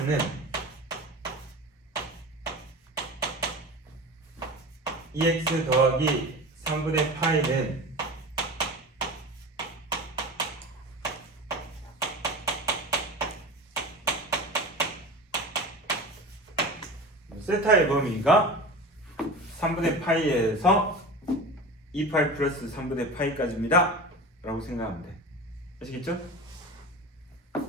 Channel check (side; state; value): both; normal; correlation 0.32